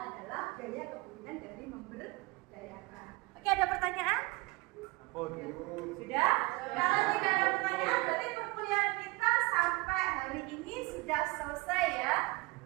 gaya kepemimpinan dari memberdayakan. Oke, ada pertanyaan? Sudah? Kalau tidak ada pertanyaan, berarti perkuliahan kita sampai hari ini sudah selesai ya?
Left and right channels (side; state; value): left; quieter; 24.0 dB